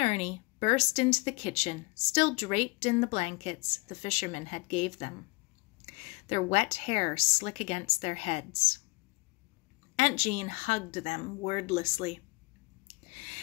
Ernie burst into the kitchen, still draped in the blankets the fishermen had gave them, their wet hair slick against their heads. Aunt Jean hugged them wordlessly.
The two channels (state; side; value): quieter; right; 26.0 dB